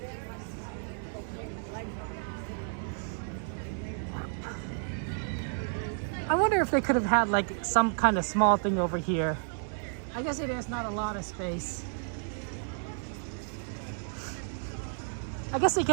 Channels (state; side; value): silent; left; 56 dB below the other